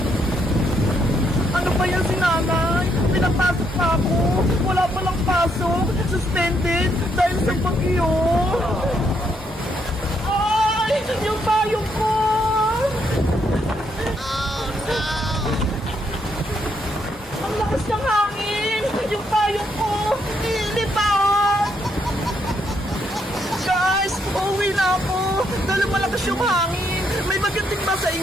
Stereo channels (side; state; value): both; normal; correlation 0.75